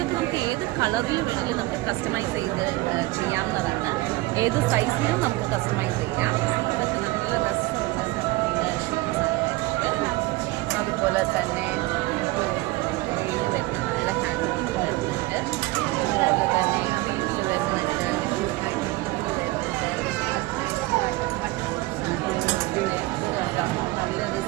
നമുക്ക് ഏത് കളറിൽ വേണമെങ്കിലും നമുക്ക് കസ്റ്റമൈസ് ചെയ്ത് ചെയ്യാവുന്നതാണ്. ഏത് സൈസിലും നമുക്ക് കസ്റ്റമൈസ് ചെയ്യാം. ഇതൊക്കെ നല്ല രസമുള്ള ഷെയ്ഡ്സാണ് വരുന്നത്. അതുപോലെ തന്നെ വെയിൽ വരുന്ന നല്ല ഹാൻഡ് വർക്ക് വരുന്നുണ്ട്. അതുപോലെ തന്നെ ഫീൽഡ് വരുന്നുണ്ട്, നല്ലൊരു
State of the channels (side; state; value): left; quieter; 20.3 dB